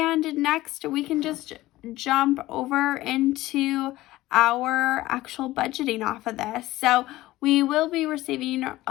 next, we can just jump over into our actual budgeting off of this. So we will be receiving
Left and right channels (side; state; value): right; quieter; 17.1 dB